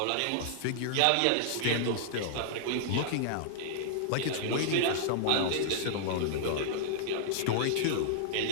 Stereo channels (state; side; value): different; both; correlation -0.02